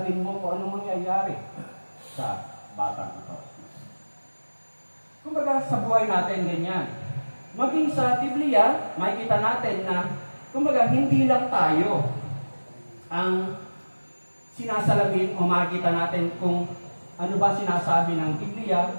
mo kung anong mangyayari sa batang ito. Kumbaga sa buhay natin ganyan. Maging sa Biblia, makikita natin na kumbaga hindi lang tayo ang sinasalamin o makikita natin kung ano ba sinasabi ng Biblia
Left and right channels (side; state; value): both; inverted; correlation -1.00